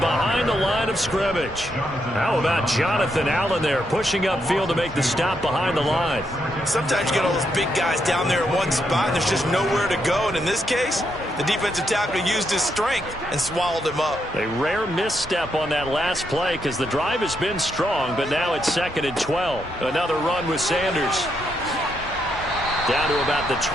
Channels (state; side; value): normal; both; correlation 0.79